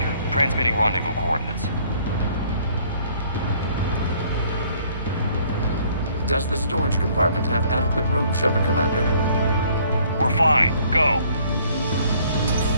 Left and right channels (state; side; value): inverted; both; correlation -0.60